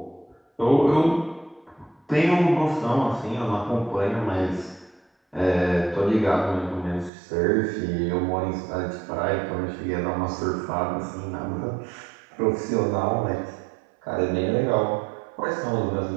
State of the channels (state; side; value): drops out; left; at 7.1 s